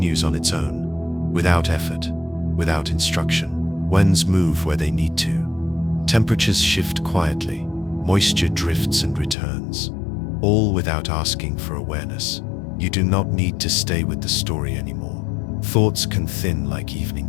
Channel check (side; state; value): right; drops out; at 9.3 s